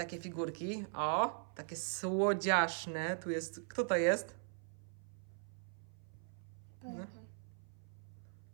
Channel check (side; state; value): left; silent; 51 dB below the other